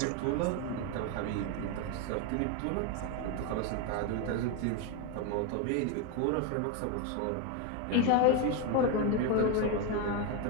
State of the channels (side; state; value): both; different; correlation 0.02